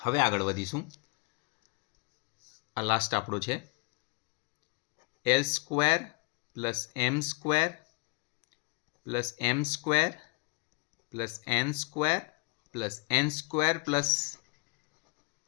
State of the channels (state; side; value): quieter; right; 30.8 dB